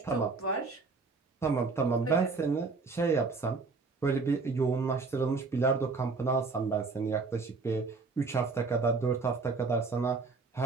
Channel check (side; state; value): left; quieter; 4.2 dB